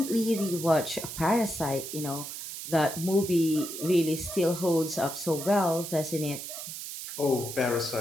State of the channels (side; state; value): right; noise; hiss, 8 dB below the sound